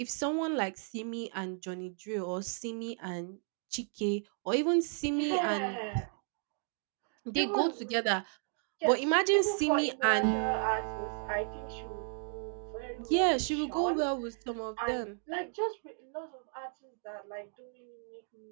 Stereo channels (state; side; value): silent; left; 55 dB below the other